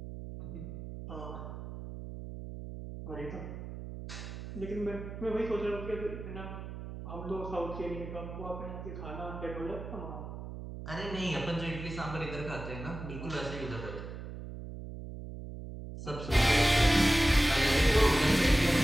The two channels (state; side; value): noise; right; hum, 9 dB below the sound